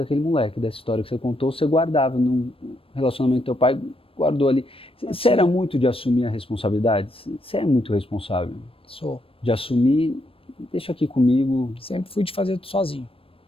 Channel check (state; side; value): late; right; 0.27 ms